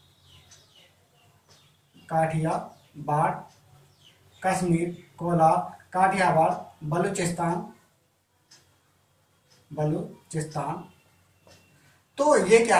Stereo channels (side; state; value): both; identical; correlation 1.00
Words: कश्मीर, कोलार, काठियावाड़, बलूचिस्तान। तो ये क्या